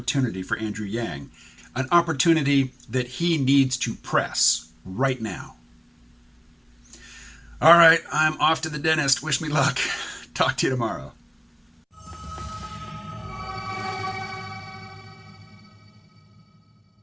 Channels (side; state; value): both; identical; correlation 1.00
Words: for Andrew Yang, an opportunity that he needs to press right now. All right, I'm off to the dentist. Wish me luck. Talk to you tomorrow.